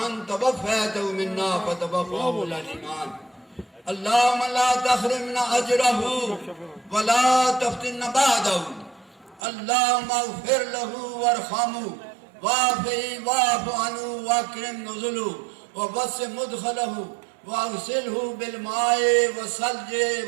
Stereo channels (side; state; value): left; drops out; at 9.4 s